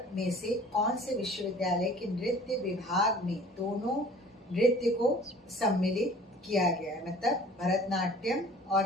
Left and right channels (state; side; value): normal; both; correlation 0.48